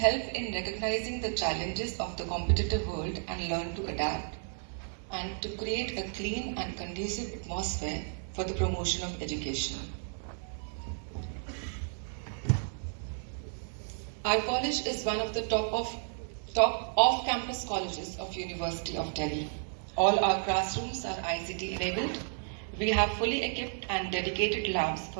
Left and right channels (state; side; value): silent; left; 56 dB below the other